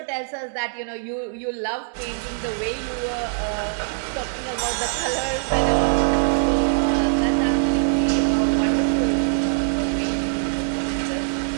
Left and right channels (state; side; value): silent; left; digital silence